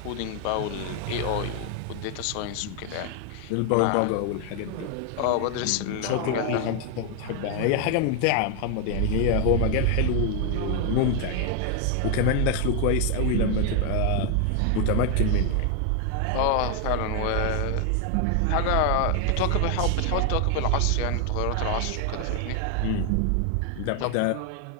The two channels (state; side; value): different; both; correlation 0.00